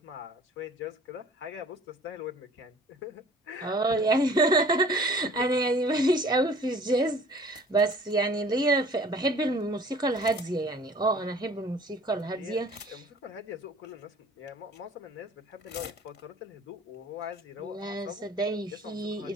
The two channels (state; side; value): normal; both; correlation 0.49